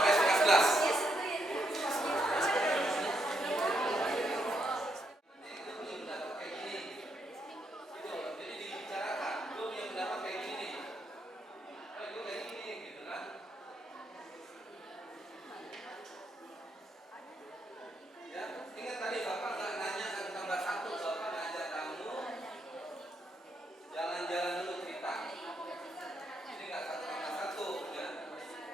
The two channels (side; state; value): both; normal; correlation 0.77